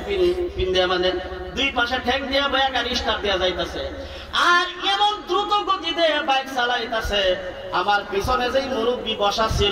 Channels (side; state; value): both; identical; correlation 1.00